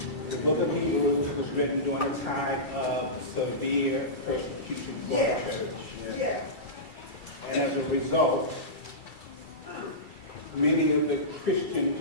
The book of Hebrews was written during a time of severe persecution for the church. And as a result, many of the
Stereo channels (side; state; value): right; late; 2.3 ms